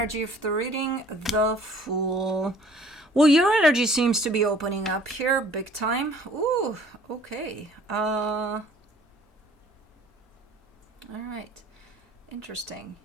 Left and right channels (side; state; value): both; normal; correlation 0.54